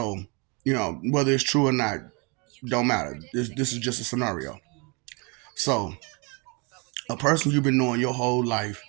whether it's true or not, don't matter. This is just a scenario. So, a person you've been knowing your whole life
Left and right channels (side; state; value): left; quieter; 31.0 dB